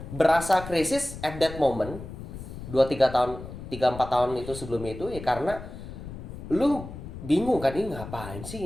berasa krisis at that moment 2-3 tahun, 3-4 tahun itu sebelumnya itu ya karena lu bingung kan ini ngapain sih,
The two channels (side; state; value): left; noise; rumble, 11 dB below the sound